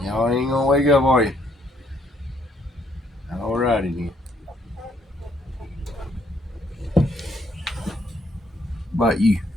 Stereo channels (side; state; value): both; normal; correlation 0.69